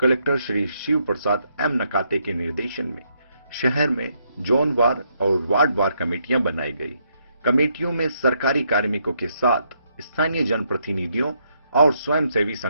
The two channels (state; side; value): inverted; both; correlation -0.75